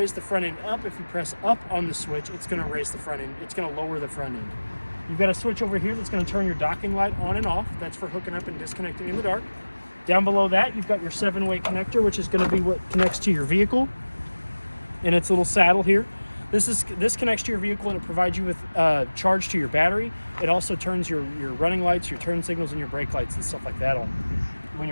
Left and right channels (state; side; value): inverted; both; correlation -1.00